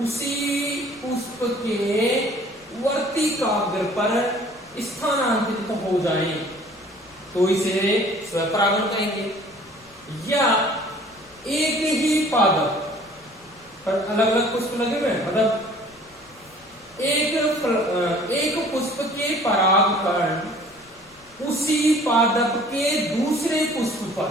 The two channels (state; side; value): noise; left; rumble, 29 dB below the sound